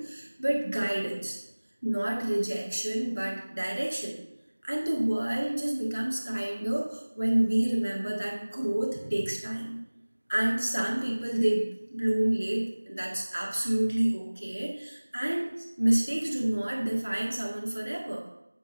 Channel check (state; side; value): inverted; both; correlation -1.00